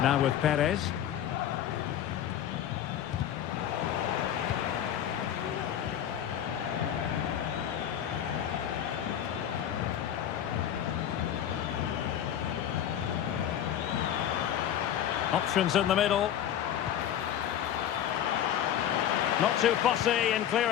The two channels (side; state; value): right; quieter; 10.4 dB